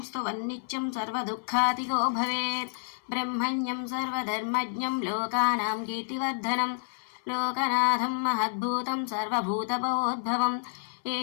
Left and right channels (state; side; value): silent; right; 58 dB below the other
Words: स्तुवन्नित्यं सर्वदुःखातिगो भवेत् ब्रह्मण्यं सर्वधर्मज्ञं लोकानां कीर्तिवर्धनं लोकनाथं महद्भूतं सर्वभूतभवोद्भवम्